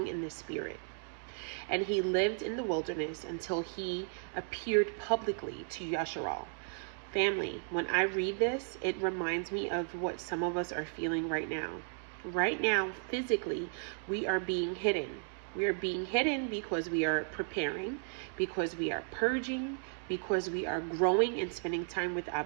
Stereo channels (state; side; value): silent; left; 55 dB below the other